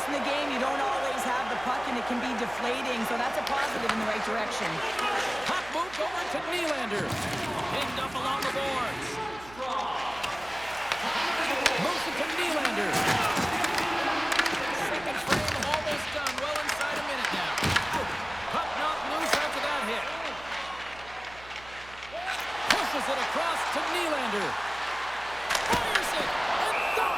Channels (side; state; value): right; noise; hum, 19 dB below the sound